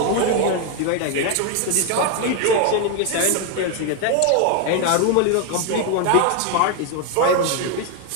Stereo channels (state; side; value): different; both; correlation 0.01